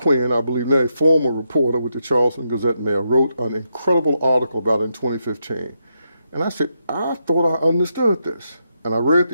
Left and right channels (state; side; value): inverted; both; correlation -0.82